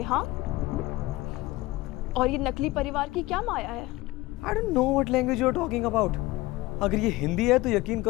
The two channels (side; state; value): right; quieter; 19.5 dB